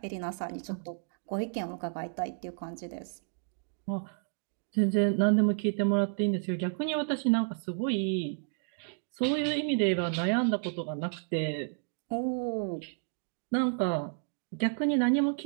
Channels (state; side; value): silent; left; digital silence